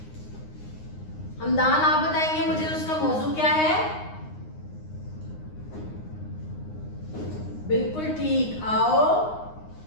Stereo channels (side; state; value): right; late; 9.7 ms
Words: हमदान। आप बताएंगे मुझे उसका मौजू क्या है। बिल्कुल ठीक, आओ